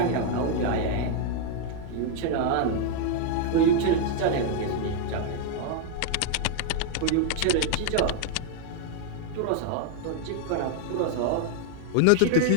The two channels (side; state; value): both; different; correlation 0.00